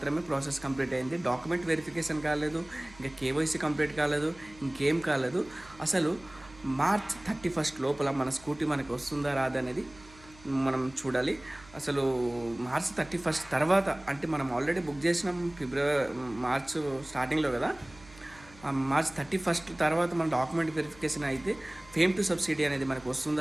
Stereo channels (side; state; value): right; noise; hum, 23 dB below the sound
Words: ప్రాసెస్ కంప్లీట్ అయింది. డాక్యుమెంట్ వెరిఫికేషన్ కాలేదు, ఇంకా కేవైసీ కంప్లీట్ కాలేదు, ఇంకేం కాలేదు. అసలు మార్చ్ 31 లోపల మన స్కూటీ మనకి వస్తుందా రాదా అనేది మనం చూడాలి. అసలు మార్చ్ 31 తర్వాత అంటే మనం ఆల్రెడీ బుక్ చేసినాం మార్చ్ స్టార్టింగ్లో కదా. మార్చ్ 31 తర్వాత మన డాక్యుమెంట్ వెరిఫికేషన్ అయితే ఫేమ్ టు సబ్సిడీ అనేది మనకు